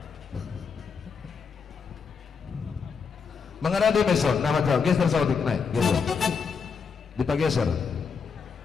mengenai meson nama jauh geser saudik naik gitu dipageser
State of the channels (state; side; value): quieter; right; 5.7 dB